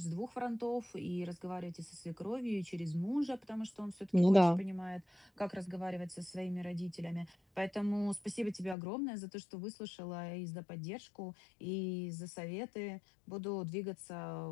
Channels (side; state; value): right; drops out; at 8.8 s